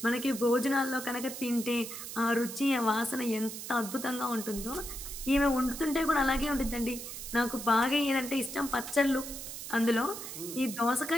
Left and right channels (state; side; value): noise; right; hiss, 9 dB below the sound